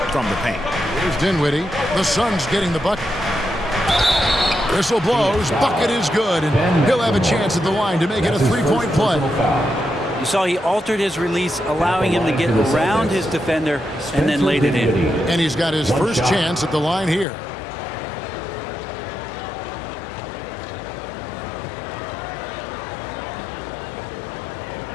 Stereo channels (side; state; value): right; drops out; at 17.2 s